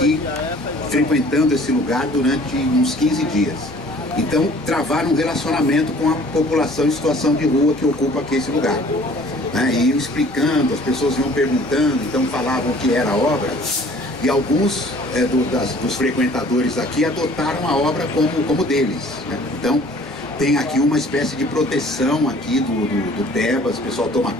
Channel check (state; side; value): normal; both; correlation 0.52